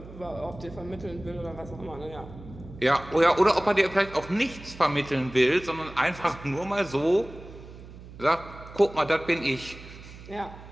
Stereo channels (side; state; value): right; noise; hum, 16 dB below the sound